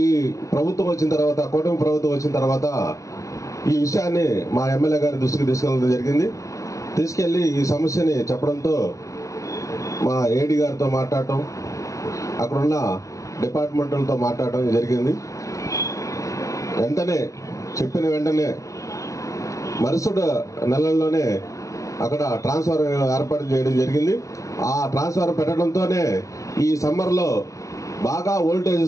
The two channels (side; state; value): right; late; 0.16 ms